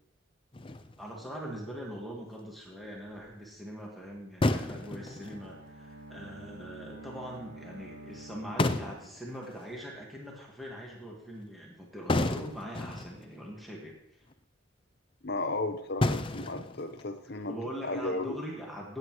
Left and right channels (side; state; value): both; normal; correlation 0.53